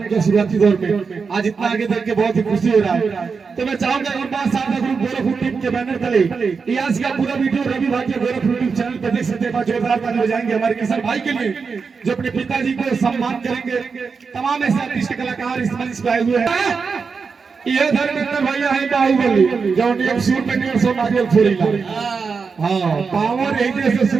किया शुरुआती दौर में, आज इतना आगे देख के बहुत ही खुशी हो रहा है। तो मैं चाहूंगा एक बार साथ ग्रुप गोरखपुर टीम के बैनर तले आज का पूरा वीडियो रवि भाई के गोरखपुर टीम चैनल पर देख सकते हैं। जोरदार ताली बजाएंगे हमारे किशन भाई के लिए जो अपने पिताजी को सम्मान करेंगे। तमाम ऐसे आर्टिस्ट कलाकार इस मंच पे आए हुए हैं। ये धर्मेंद्र भैया है बाहुबली जो एक सूर पे 150 नारियल फोड़ीला। हां पावर यही से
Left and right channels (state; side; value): quieter; left; 5.2 dB